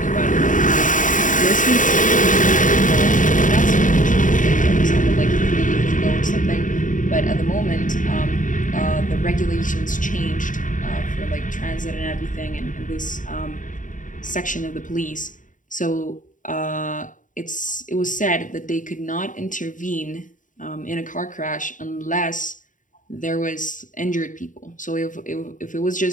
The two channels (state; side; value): late; right; 0.38 ms